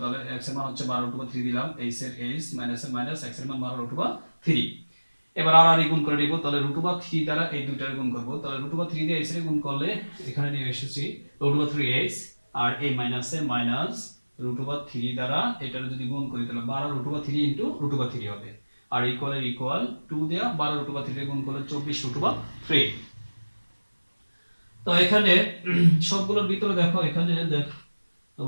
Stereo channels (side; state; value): both; inverted; correlation -1.00